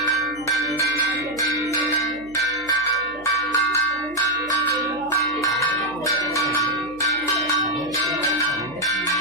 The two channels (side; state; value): right; noise; hum, 23 dB below the sound